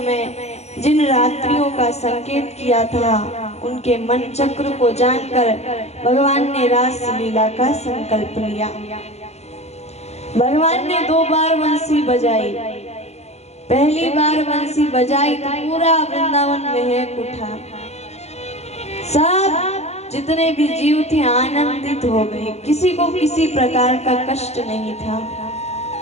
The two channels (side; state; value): right; late; 0.31 ms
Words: जिन रात्रियों का संकेत किया था, उनके मन चक्र को जानकर भगवान ने रास लीला का संकल्प लिया। भगवान ने 2 बार बंसी बजाई। पहली बार बंसी बजाई तो पूरा वृंदावन महक उठा, सब जितने भी जीव थे आनंदित हो गए, किसी को किसी प्रकार का कष्ट नहीं था।